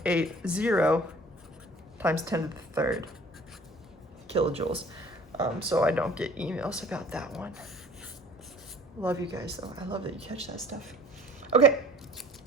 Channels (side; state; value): both; normal; correlation 0.50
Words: times 10 to the 3rd kilojoules. So I don't get emails about that one. Love you guys though. I love that you catch that stuff. Okay,